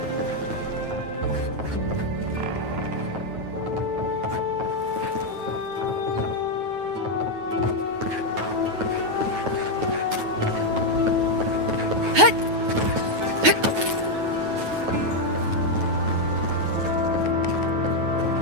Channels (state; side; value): late; left; 9.3 ms